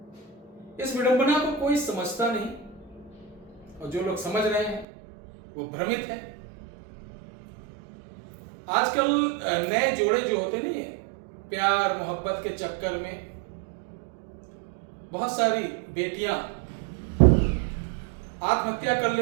इस विडंबना को कोई समझता नहीं और जो लोग समझ रहे हैं वो भ्रमित है। आजकल नए जोड़े जो होते नहीं है, प्यार मोहब्बत के चक्कर में बहुत सारी बेटियां आत्महत्या कर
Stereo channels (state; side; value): drops out; left; at 4.9 s